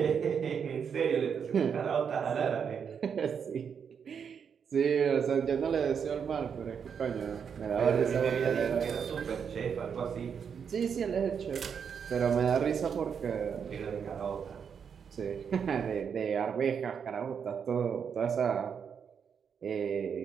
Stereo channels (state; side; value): quieter; left; 7.0 dB